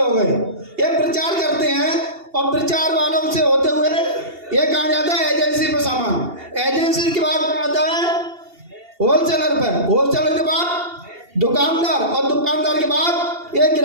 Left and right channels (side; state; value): left; late; 2.8 ms